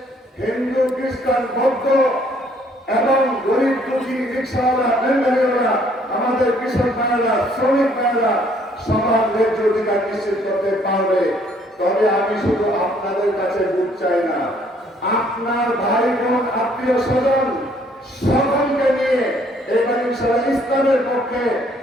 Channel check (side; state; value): both; normal; correlation 0.63